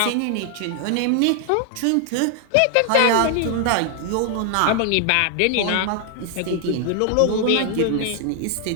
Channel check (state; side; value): different; both; correlation 0.00